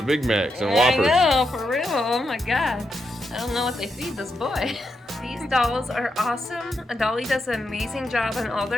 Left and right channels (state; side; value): normal; both; correlation 0.83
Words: Big Macs and Whoppers. I know, for real. Oh my God. I don't know what they feed this boy. These dolls are awesome. Adolly does an amazing job on all